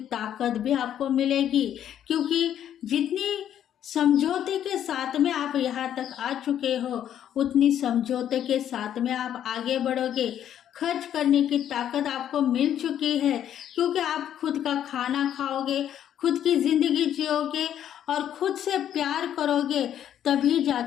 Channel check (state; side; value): quieter; right; 10.3 dB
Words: ताकत भी आपको मिलेगी, क्योंकि जितनी समझौते के साथ में आप यहाँ तक आ चुके हो, उतनी समझौते के साथ में आप आगे बढ़ोगे। खर्च करने की ताकत आपको मिल चुकी है, क्योंकि आप खुद का खाना खाओगे, खुद की जिंदगी जियोगे और खुद से प्यार करोगे, तभी